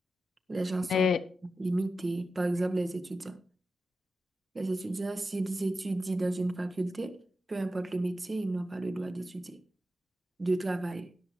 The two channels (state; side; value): normal; both; correlation 0.91